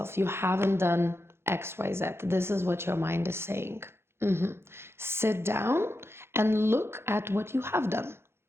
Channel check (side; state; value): left; late; 0.12 ms